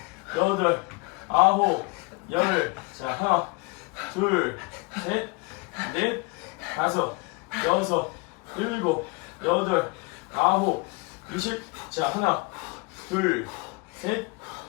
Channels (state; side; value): quieter; right; 27.8 dB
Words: 여덟, 아홉, 열. 자, 하나, 둘, 셋, 넷, 다섯, 여섯, 일곱, 여덟, 아홉, 20. 자, 하나, 둘, 셋,